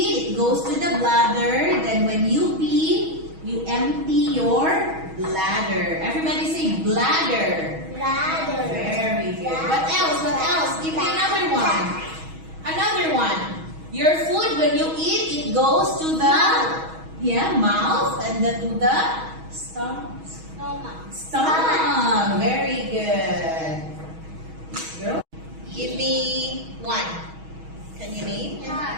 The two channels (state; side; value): late; left; 6.3 ms